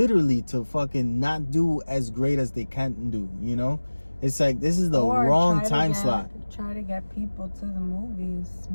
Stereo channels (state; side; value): inverted; both; correlation -1.00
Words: to fucking not do as great as they can do, you know? It's like this is the Or wrong try to time get- slot. Try to get people to the movies